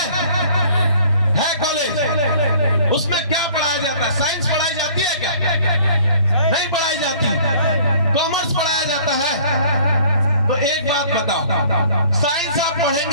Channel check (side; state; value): both; inverted; correlation -0.53